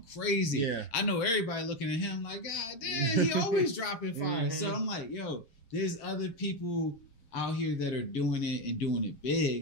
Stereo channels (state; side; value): late; right; 7.4 ms